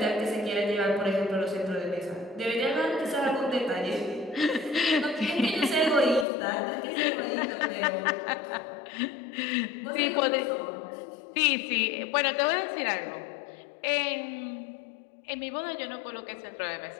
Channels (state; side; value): drops out; right; at 6.2 s